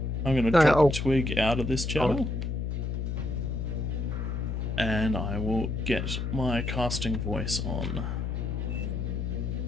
I'm going to drop Twig out of this channel. And I will get my casting voice on.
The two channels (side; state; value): left; noise; hum, 2 dB below the sound